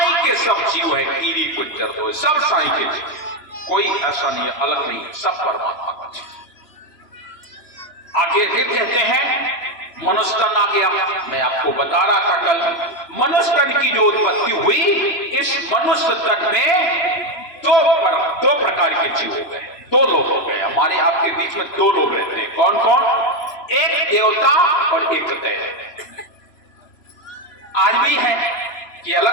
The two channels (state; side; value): late; right; 3.0 ms